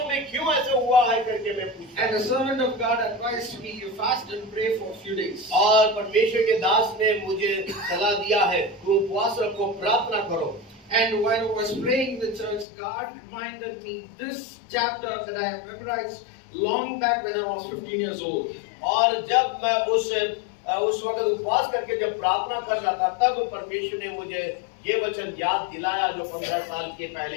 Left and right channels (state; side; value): drops out; right; at 12.7 s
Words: में क्यों ऐसे हुआ है करके मैं पूछता. And the servant of God advised me, you fast and pray for a few days. और परमेश्वर के दास ने मुझे सलाह दिया है, तुम उपवास रखो, प्रार्थना करो. And while I was praying in the church, God reminded me this chapter that I have memorized long back when I was 15 years old. और जब मैं उस वक्त उपवास करके जब प्रार्थना कर रहा था, तब परमेश्वर ने मुझे ये वचन याद दिलाया जो 15 साल के